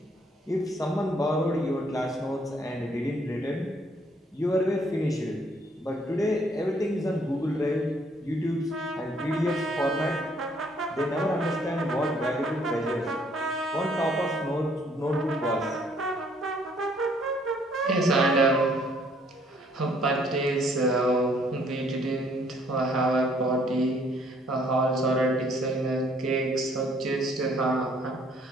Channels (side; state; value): both; normal; correlation 0.64